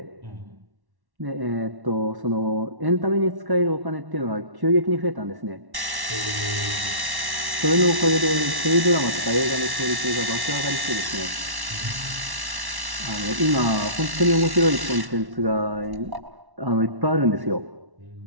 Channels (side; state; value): left; late; 1.1 ms